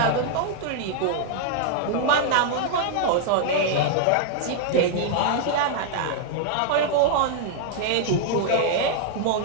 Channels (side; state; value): both; different; correlation -0.01